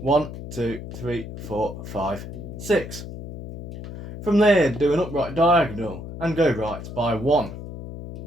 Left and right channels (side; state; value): left; noise; hum, 11 dB below the sound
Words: 1, 2, 3, 4, 5, 6. From there, do an upright diagonal and go right by 1.